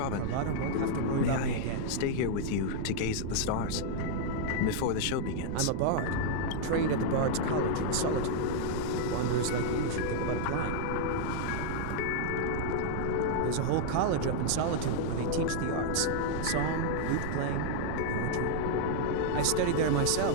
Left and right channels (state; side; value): different; both; correlation -0.01